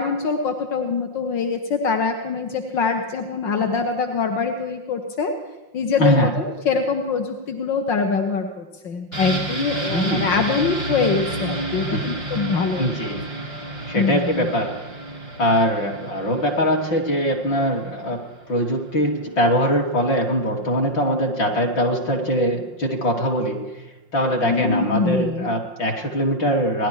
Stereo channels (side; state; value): right; late; 5.6 ms